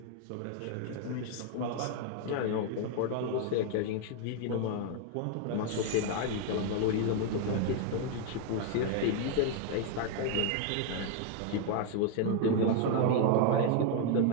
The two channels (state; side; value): different; both; correlation 0.00